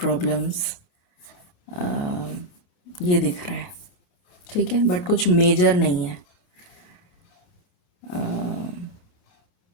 ये दिख रहा है। ठीक है, बट कुछ मेजर नहीं है।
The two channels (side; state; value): right; late; 28 ms